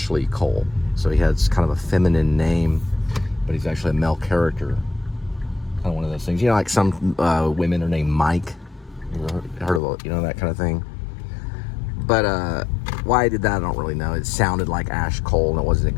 Cole, so he has kind of a feminine name, but he's actually a male character. Kind of one of those things, you know, like some women are named Mike. You ever heard of it, you know, that kind of thing. But why I did that, I don't really know. It sounded like Ash Cole, and it wasn't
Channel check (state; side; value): drops out; right; at 9.8 s